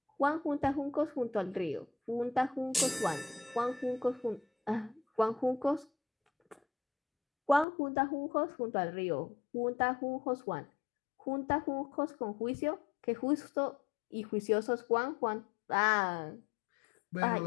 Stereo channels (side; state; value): right; drops out; at 7.7 s